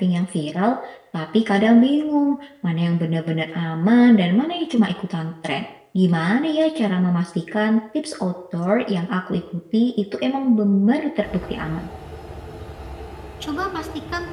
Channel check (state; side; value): identical; both; correlation 1.00